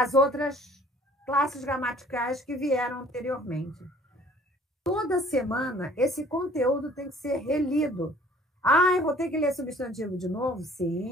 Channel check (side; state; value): both; normal; correlation 0.54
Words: outras classes gramaticais que vieram anteriormente. Toda semana, esse conteúdo tem que ser relido. Eu vou ter que ler substantivo de novo?